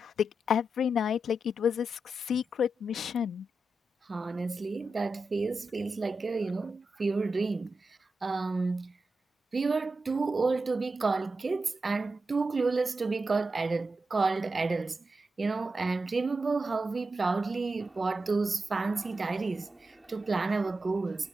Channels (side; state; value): both; normal; correlation 0.89